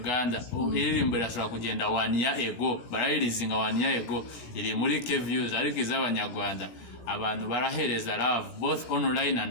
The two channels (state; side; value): late; right; 17 ms